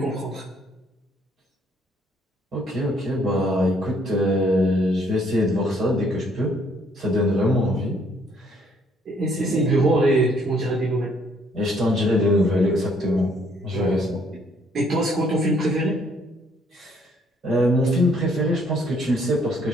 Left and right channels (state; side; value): normal; both; correlation 0.65